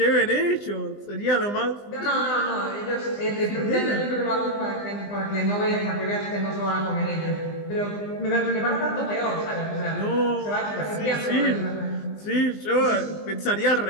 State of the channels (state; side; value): late; right; 20 ms